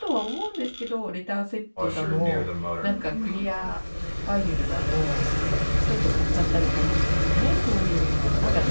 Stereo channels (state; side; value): inverted; both; correlation -1.00